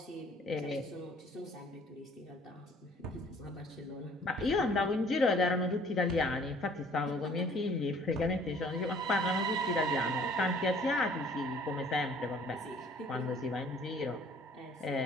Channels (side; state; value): both; normal; correlation 0.55